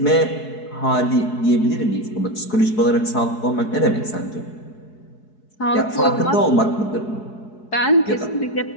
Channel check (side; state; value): right; late; 4.7 ms